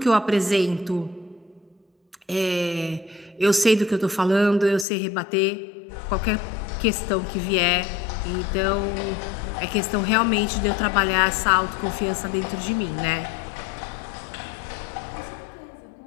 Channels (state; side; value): drops out; right; at 4.9 s